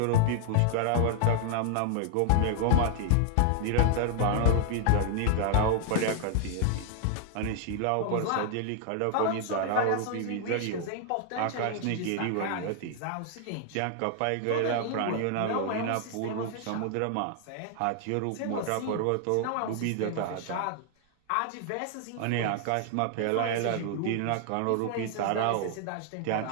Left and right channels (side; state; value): both; different; correlation 0.00